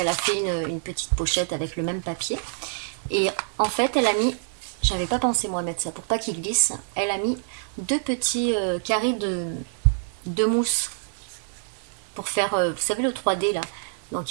a fait une petite pochette avec le même papier. Et en fait elle a mis, j'avais pas pensé moi à mettre ça pour pas qu'il glisse, elle a mis deux petits carrés de mousse pour faire, vous savez le 3D là, donc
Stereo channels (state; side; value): silent; left; digital silence